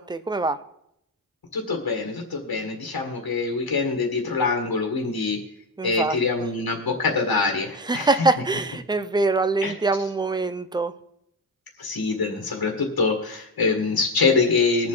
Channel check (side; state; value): both; normal; correlation 0.15